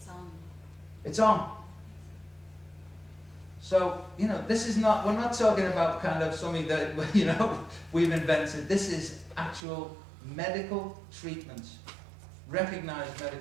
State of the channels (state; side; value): drops out; left; at 9.6 s